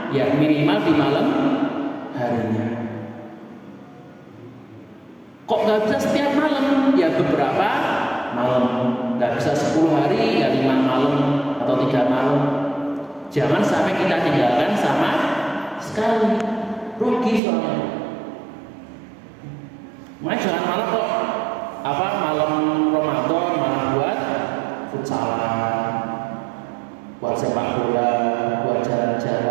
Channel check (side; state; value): left; drops out; at 17.4 s